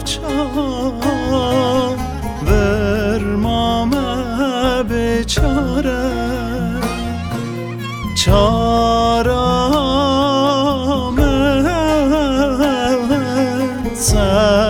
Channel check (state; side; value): identical; both; correlation 1.00